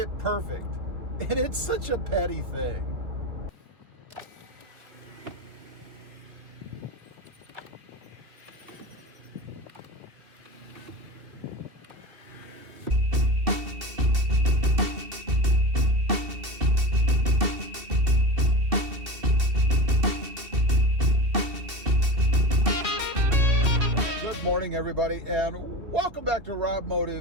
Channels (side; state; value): left; late; 2.7 ms